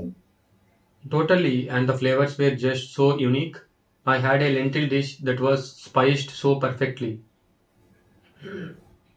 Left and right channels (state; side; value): identical; both; correlation 1.00